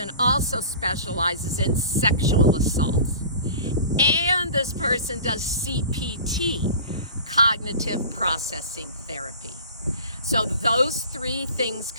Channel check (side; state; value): both; inverted; correlation -0.40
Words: also specializes in sexual assaults. And this person does CPT, cognitive processing therapy. So those three things